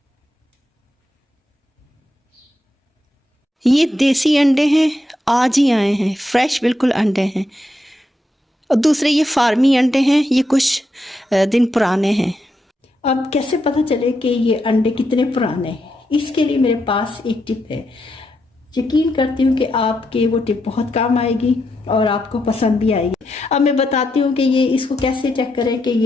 ये देसी अंडे हैं, आज ही आए हैं, फ्रेश बिल्कुल अंडे हैं। और दूसरे ये फार्मी अंडे हैं, ये कुछ दिन पुराने हैं। अब कैसे पता चले कि ये अंडे कितने पुराने हैं, इसके लिए मेरे पास एक टिप है। यकीन करती हूँ कि आपके वो टिप बहुत काम आएगी और आपको पसंद भी आएगी। अब मैं बताती हूँ कि ये इसको कैसे चेक करें कि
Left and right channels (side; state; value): both; normal; correlation 0.82